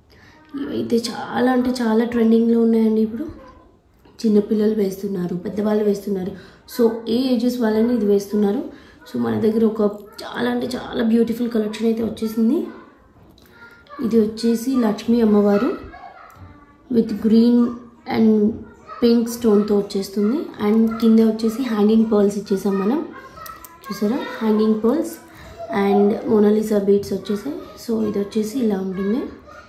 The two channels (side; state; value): both; identical; correlation 1.00